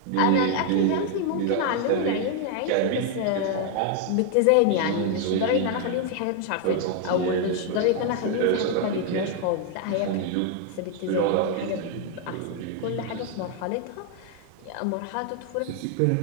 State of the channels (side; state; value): both; different; correlation 0.01